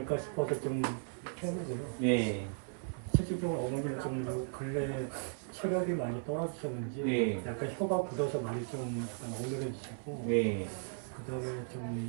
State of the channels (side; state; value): left; silent; digital silence